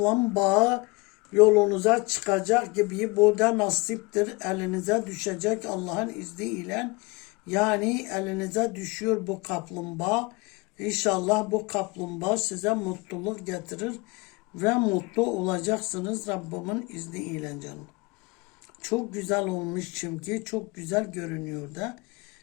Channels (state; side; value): quieter; right; 26.2 dB